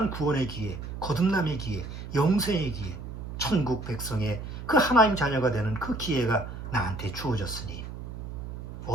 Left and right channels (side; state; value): right; noise; hum, 9 dB below the sound